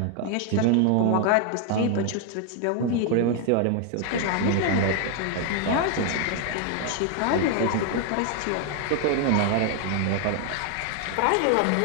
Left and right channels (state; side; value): different; both; correlation 0.00